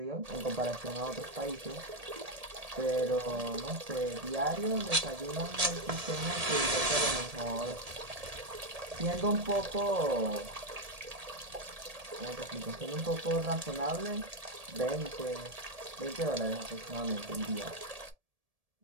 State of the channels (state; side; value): late; left; 1.7 ms